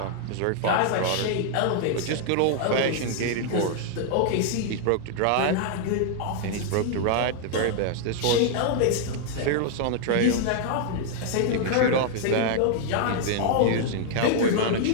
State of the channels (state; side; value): different; both; correlation -0.01